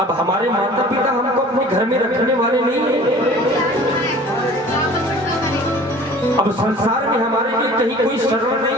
हमारे माता पिता हमको अपने घर में रखने वाले नहीं हैं, अब संसार में हमारे लिए कहीं कोई शरण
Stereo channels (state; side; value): normal; both; correlation 0.46